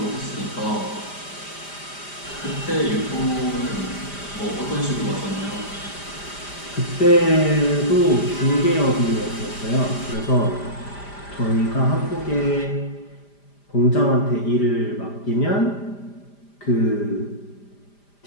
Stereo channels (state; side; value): late; right; 5.0 ms